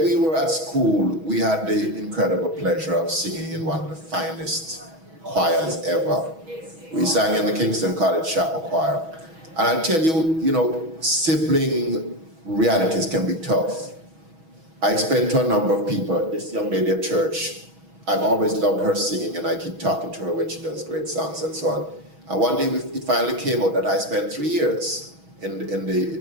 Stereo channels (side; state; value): left; late; 6.2 ms